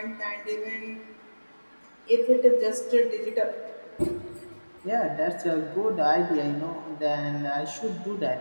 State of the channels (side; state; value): both; inverted; correlation -1.00